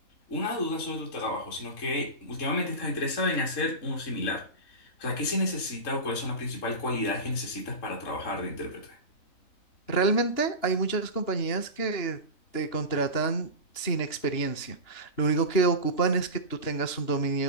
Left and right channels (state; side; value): late; right; 2.9 ms